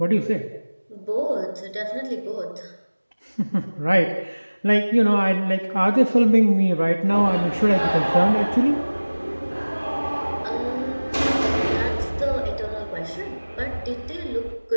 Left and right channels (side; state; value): both; inverted; correlation -1.00